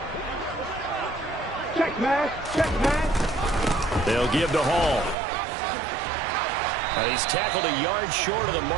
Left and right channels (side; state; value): left; drops out; at 5.2 s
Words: They'll give to Hall. And he's tackled a yard short of the